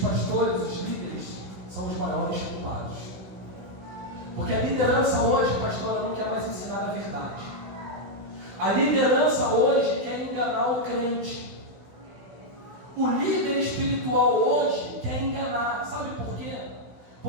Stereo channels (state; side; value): late; left; 16 ms